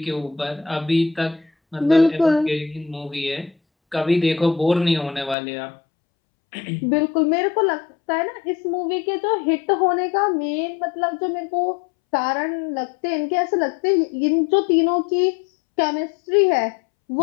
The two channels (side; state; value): right; drops out; at 5.4 s